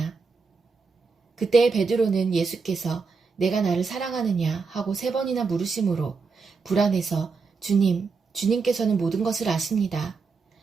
그때 베드로는 예수께서 내가 나를 사랑하느냐 하고 세 번이나 물으심으로 불안해서 주님께서는 모든 것을 아십니다.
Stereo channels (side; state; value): left; quieter; 4.7 dB